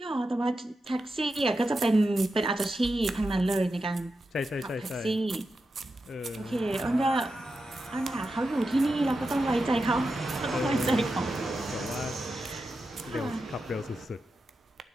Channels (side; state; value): both; normal; correlation 0.89